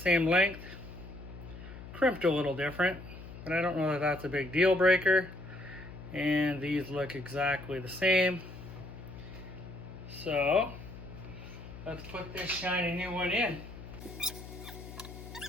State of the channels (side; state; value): left; noise; hum, 13 dB below the sound